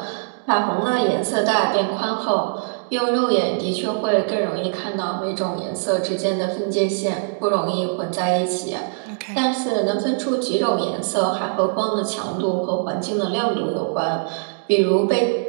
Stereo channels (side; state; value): left; silent; digital silence